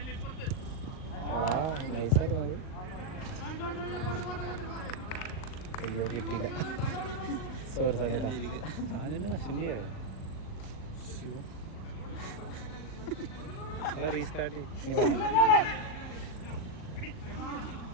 അയ്യോ കിട്ടിയില്ല, സോറി സാധനം കഷൻ്റെ അല്ല റീസ്റ്റാർട്ട്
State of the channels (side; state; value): right; late; 38 ms